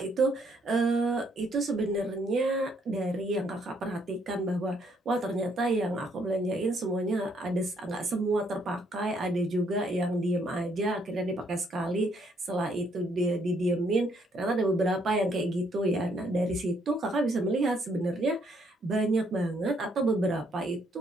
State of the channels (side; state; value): both; normal; correlation 0.70